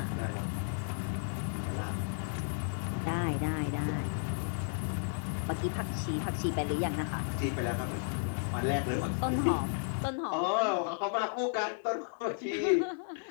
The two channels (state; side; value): silent; right; digital silence